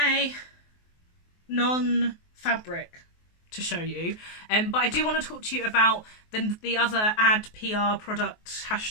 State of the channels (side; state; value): right; late; 23 ms